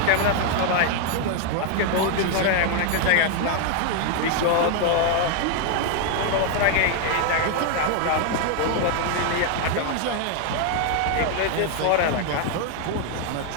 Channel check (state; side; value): different; both; correlation 0.00